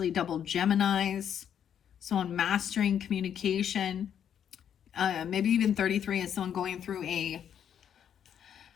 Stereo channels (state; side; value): quieter; right; 8.9 dB